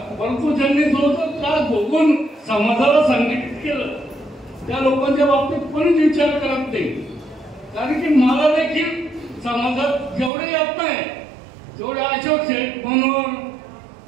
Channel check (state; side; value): drops out; left; at 10.3 s